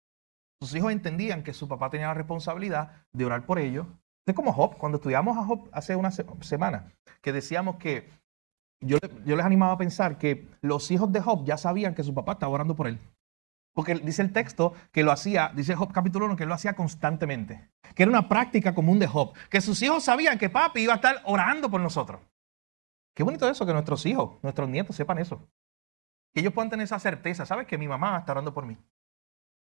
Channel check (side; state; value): left; quieter; 29.7 dB